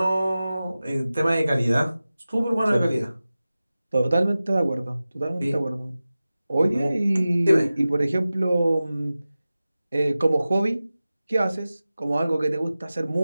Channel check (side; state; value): both; inverted; correlation -0.96